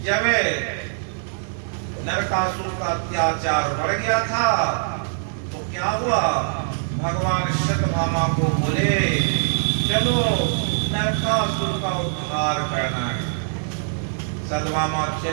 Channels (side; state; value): left; silent; 63 dB below the other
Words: जब नरकासुर का अत्याचार बढ़ गया था तो क्या हुआ, भगवान सत्यभामा को बोले चलो नरकासुर का उद्धार करना है। सत्यभामा